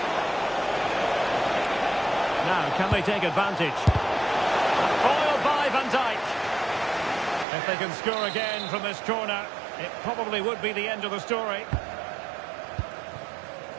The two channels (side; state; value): left; drops out; at 7.5 s